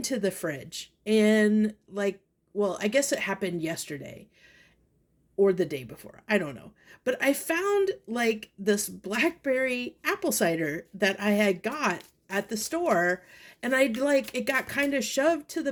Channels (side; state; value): both; identical; correlation 1.00